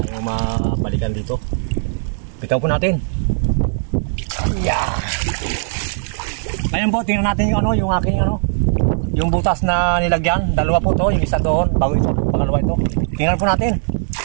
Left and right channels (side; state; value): left; silent; 67 dB below the other